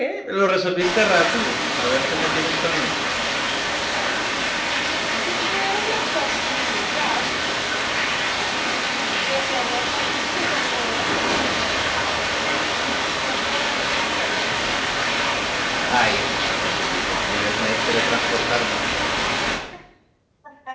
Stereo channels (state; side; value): identical; both; correlation 1.00